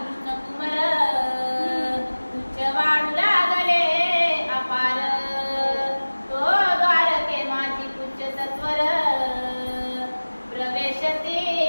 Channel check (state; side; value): inverted; both; correlation -1.00